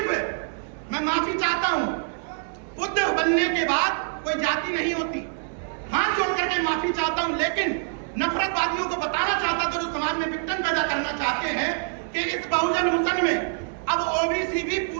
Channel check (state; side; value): silent; left; digital silence